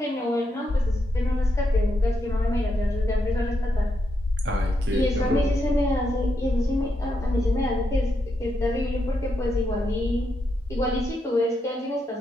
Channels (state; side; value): normal; both; correlation 0.82